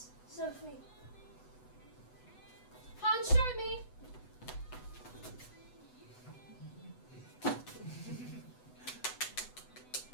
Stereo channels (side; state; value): right; late; 8.0 ms